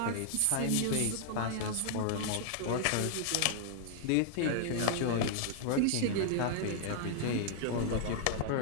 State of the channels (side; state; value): both; different; correlation -0.01